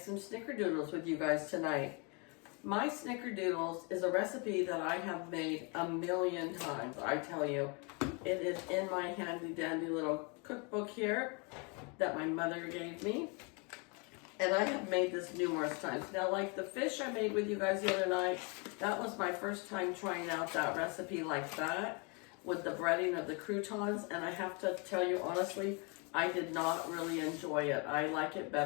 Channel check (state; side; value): quieter; right; 32.8 dB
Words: snickerdoodles with you guys tonight. My snickerdoodles is a recipe that I have made a million times, I tell you. It is in my handy dandy little cookbook here that my mother gave me. And I have made this numerous times. Now, like the fish I made with you guys the other night, that was my first time trying out that recipe like that with the breading of the croutons. And I have to tell you honestly, I did not really enjoy it. I like it